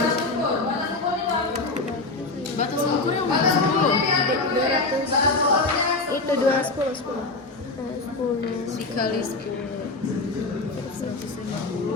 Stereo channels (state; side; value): quieter; right; 3.4 dB